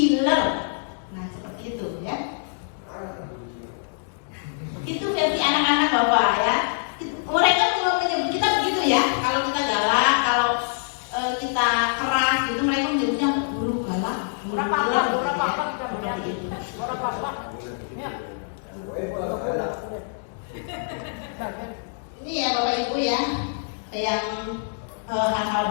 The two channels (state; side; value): silent; right; digital silence